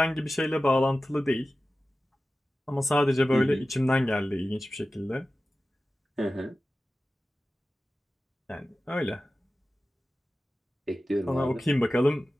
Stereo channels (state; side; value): normal; both; correlation 0.95